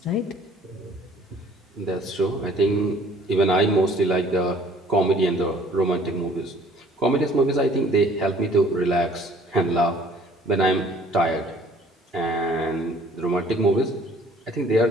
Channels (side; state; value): both; normal; correlation 0.55